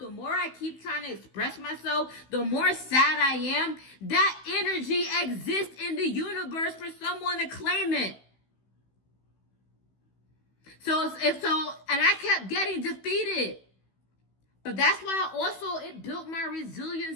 more I keep trying to express myself, the more sad I am. That energy exists in the universe for someone to claim it. And I kept getting defeated. But that's why also it built my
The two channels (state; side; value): late; right; 16 ms